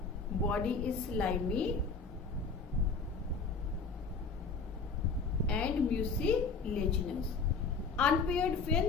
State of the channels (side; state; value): right; quieter; 4.5 dB